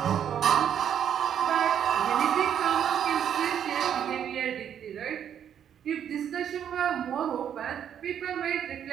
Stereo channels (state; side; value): quieter; left; 9.2 dB